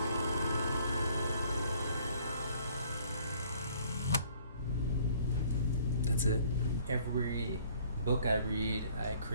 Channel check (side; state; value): both; inverted; correlation -0.58